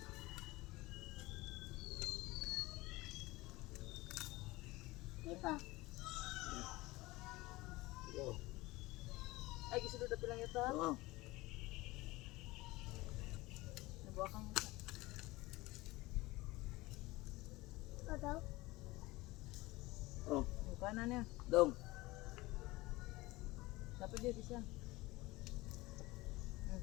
Di ba? Oh. Ay, gisulod na pilang ito. Oh. Nabuha kang ito. Ano? Oh. Yung kanan niya. Dong. Dapat dia bisa.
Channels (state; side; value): quieter; right; 20.6 dB